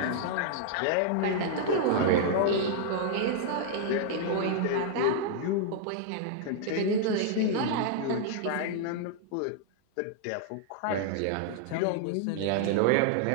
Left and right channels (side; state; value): both; different; correlation -0.01